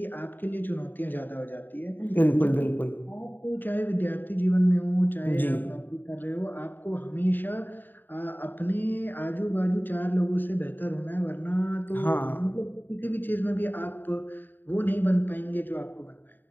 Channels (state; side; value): late; right; 0.091 ms